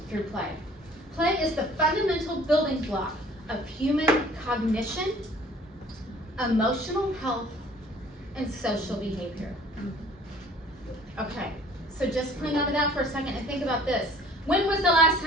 through play. Play is the fundamental building block of human cognition, emotional health, and social behavior. Okay, so just hang on to that for a second and think about this. When was the last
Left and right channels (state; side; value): normal; both; correlation 0.52